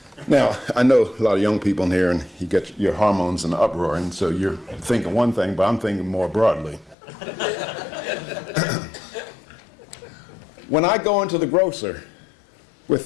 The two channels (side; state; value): right; drops out; at 7.0 s